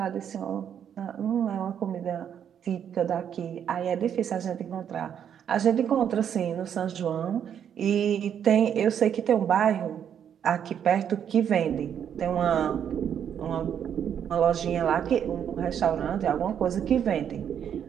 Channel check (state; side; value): quieter; left; 8.8 dB